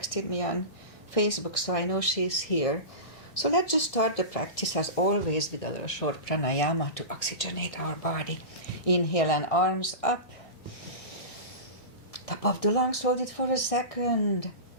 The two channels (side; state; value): right; late; 1.6 ms